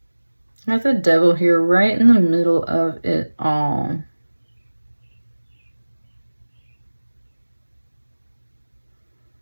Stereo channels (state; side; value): inverted; both; correlation -1.00